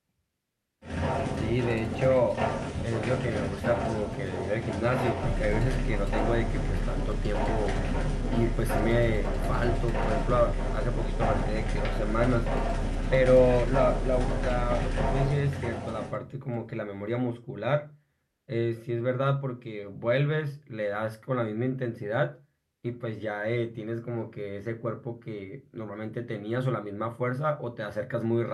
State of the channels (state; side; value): identical; both; correlation 1.00